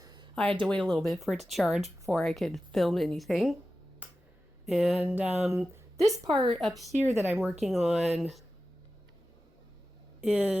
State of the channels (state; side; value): normal; both; correlation 0.94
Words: I had to wait a little bit for it to charge before I could film anything. And this part up here that I'm working on